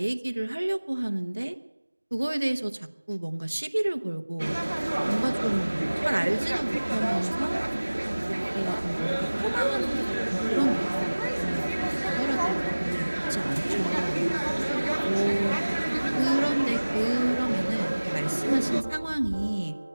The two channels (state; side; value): inverted; both; correlation -1.00